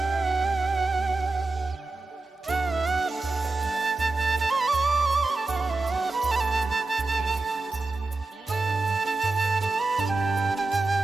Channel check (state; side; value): quieter; left; 3.3 dB